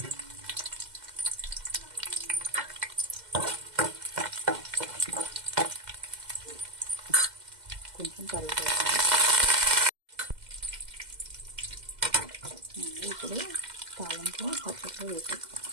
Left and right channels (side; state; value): left; late; 2.1 ms